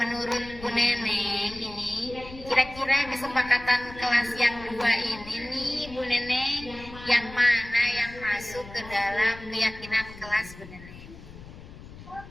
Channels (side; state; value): left; noise; rumble, 16 dB below the sound